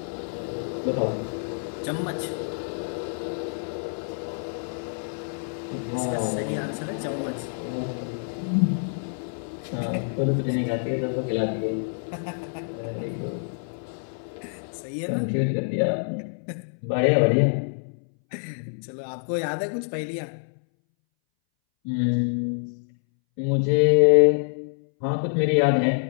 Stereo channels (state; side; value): silent; right; 60 dB below the other